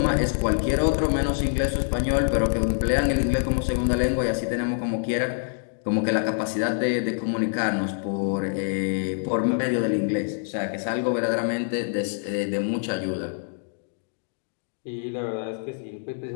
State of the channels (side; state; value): right; silent; digital silence